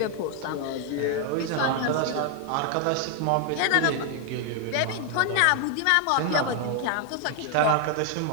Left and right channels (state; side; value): different; both; correlation 0.00